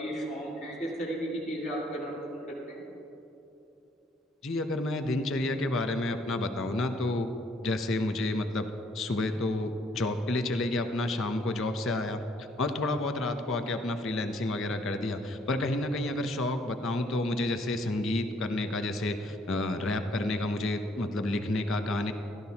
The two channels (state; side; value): normal; both; correlation 0.65